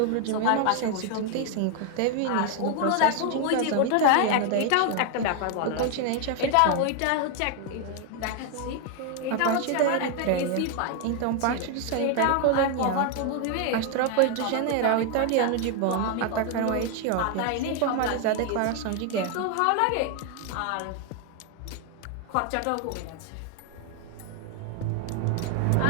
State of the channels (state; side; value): different; both; correlation 0.01